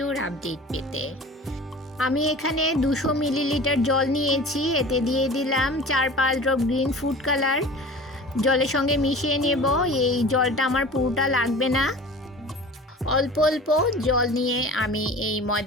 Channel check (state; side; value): normal; both; correlation 0.40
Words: আপডেট পেতে। আমি এখানে 200 মিলিলিটার জল নিয়েছি। এতে দিয়ে দিলাম 4-5 ড্রপ গ্রিন ফুড কালার। জলের সঙ্গে মিশিয়ে নেব। এই জলটা আমার পুরোটা লাগবে না, অল্প অল্প জল নিয়ে আমি এই